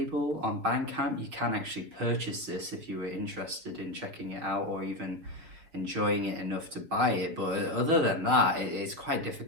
on Bandcamp. You can actually purchase this if you were interested in checking it out or even enjoying it enough to buy it. But other than that, it's quite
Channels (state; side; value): late; left; 6.5 ms